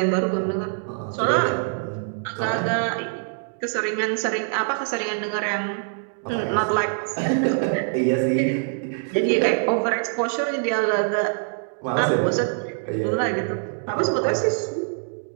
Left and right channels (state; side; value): silent; left; 62 dB below the other